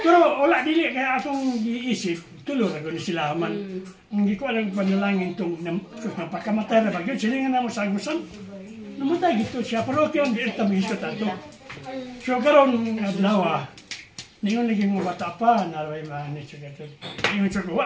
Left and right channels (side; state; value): both; identical; correlation 1.00